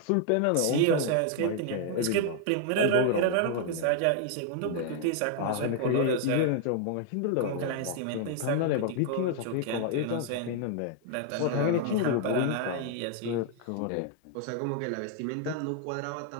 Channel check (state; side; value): different; both; correlation 0.00